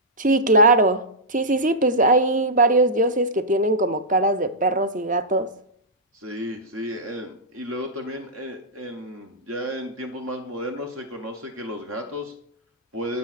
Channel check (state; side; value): normal; both; correlation -0.11